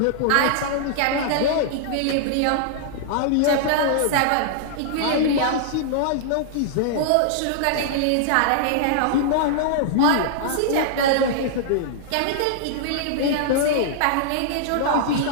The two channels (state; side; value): different; both; correlation -0.01